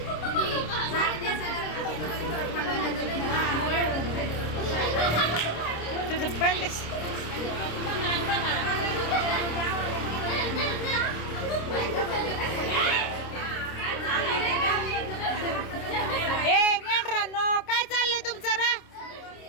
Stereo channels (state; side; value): late; right; 26 ms